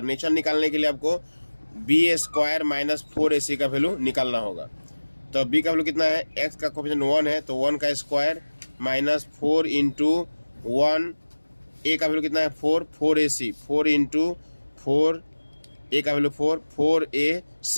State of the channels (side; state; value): both; inverted; correlation -1.00